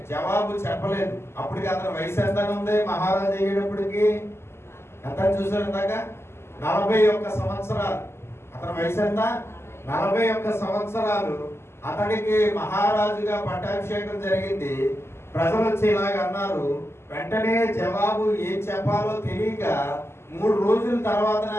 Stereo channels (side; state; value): right; late; 0.12 ms